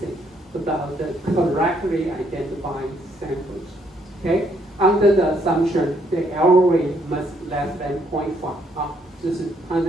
about the correctly identified samples. Okay, under the assumption the error rate must less than 0.5 啊，就是它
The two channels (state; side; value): normal; both; correlation 0.70